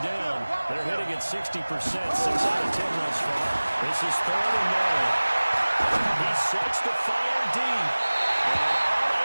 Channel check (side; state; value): both; inverted; correlation -1.00